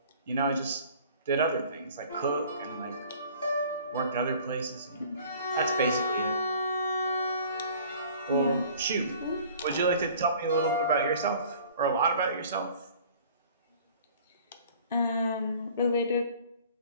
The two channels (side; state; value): both; inverted; correlation -0.50